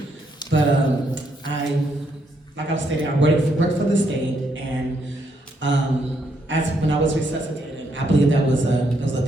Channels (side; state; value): both; normal; correlation 0.75